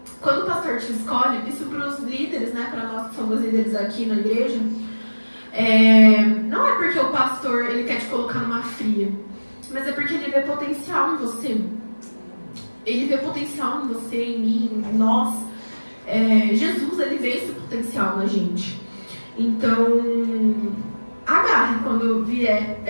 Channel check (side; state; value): both; inverted; correlation -1.00